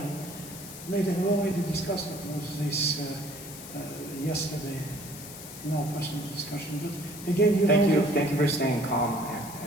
made an already discussed of this yesterday in our personal discussion. But again, you Thank know, you. Thank you for staying calm.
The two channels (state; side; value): noise; left; hiss, 13 dB below the sound